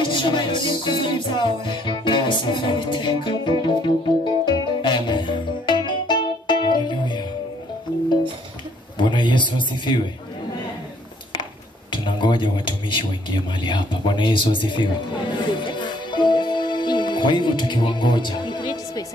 jina la Yesu. Amen. Haleluya. Bwana Yesu asifiwe. Tunangoja watumishi waingie mahali hapa. Bwana Yesu asifiwe. Kwa hivyo tukiwangoja,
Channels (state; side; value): normal; both; correlation 0.64